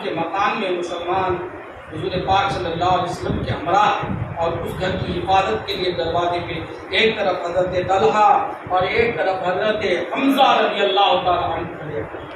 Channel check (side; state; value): both; identical; correlation 1.00